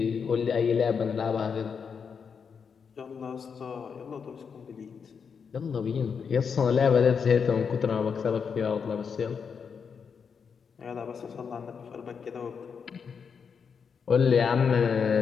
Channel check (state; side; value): quieter; right; 6.3 dB